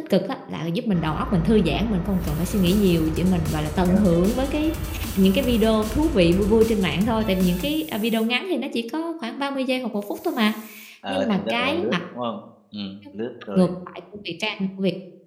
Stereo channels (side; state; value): both; identical; correlation 1.00